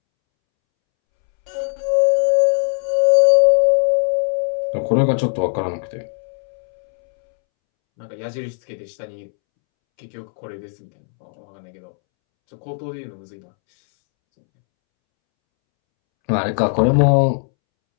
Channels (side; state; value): right; silent; 66 dB below the other